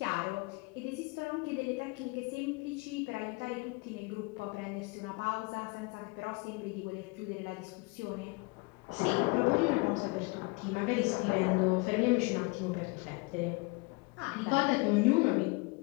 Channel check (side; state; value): right; quieter; 27.0 dB